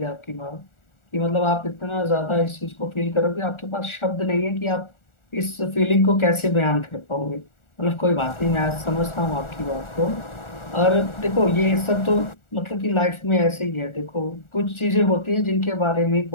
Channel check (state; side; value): late; right; 1.4 ms